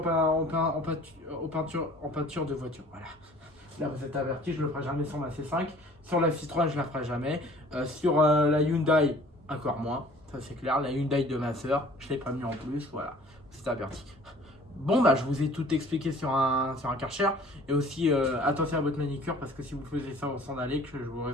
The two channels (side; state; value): both; normal; correlation 0.50